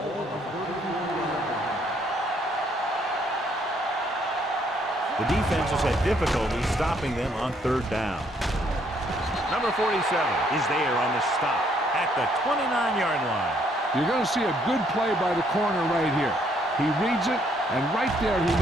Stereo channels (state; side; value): normal; both; correlation 0.68